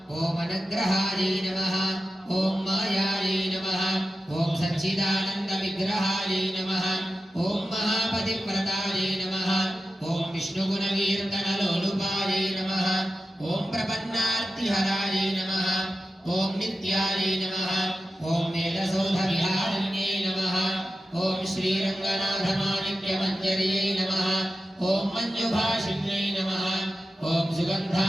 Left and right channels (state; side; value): normal; both; correlation 0.92